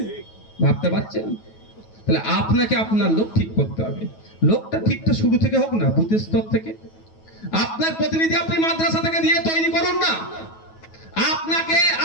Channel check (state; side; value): late; right; 9.3 ms